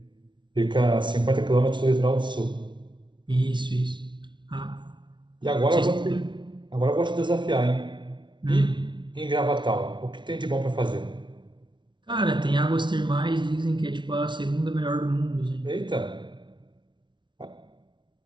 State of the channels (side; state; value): left; late; 0.23 ms